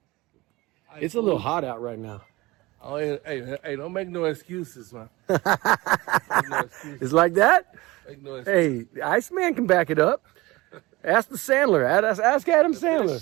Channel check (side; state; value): left; quieter; 21.0 dB